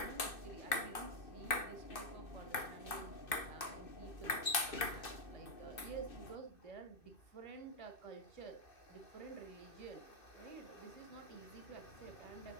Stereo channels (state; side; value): late; right; 2.6 ms